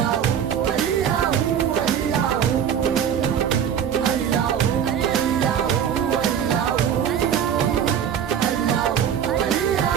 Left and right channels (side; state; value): left; quieter; 8.7 dB